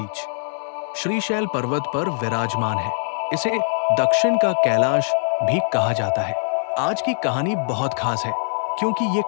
श्रीशैल पर्वत पर विराजमान है। इसे दक्षिण का कैलाश भी कहा जाता है। आज की कहानी बहुत खास है क्योंकि ये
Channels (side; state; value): right; silent; digital silence